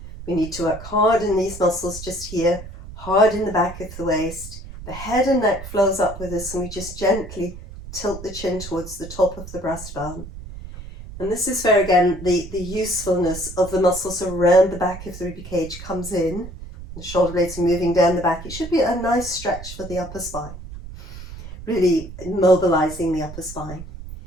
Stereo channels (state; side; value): noise; right; rumble, 13 dB below the sound